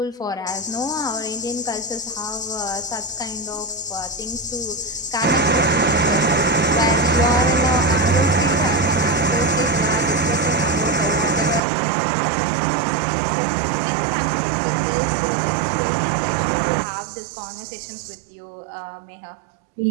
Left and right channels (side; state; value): left; drops out; at 11.6 s